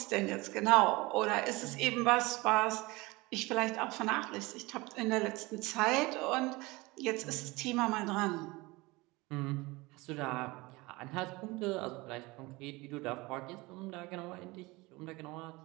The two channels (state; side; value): quieter; left; 22.8 dB